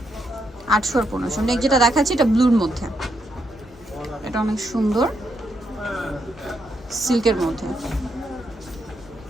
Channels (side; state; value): both; normal; correlation 0.79